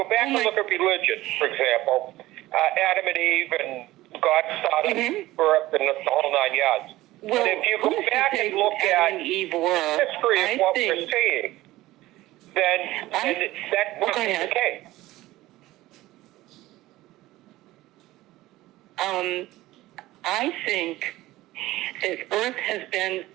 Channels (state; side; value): quieter; left; 17.2 dB